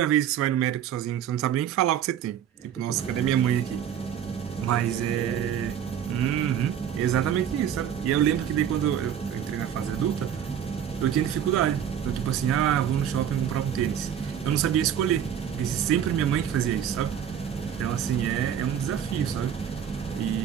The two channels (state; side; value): quieter; left; 9.3 dB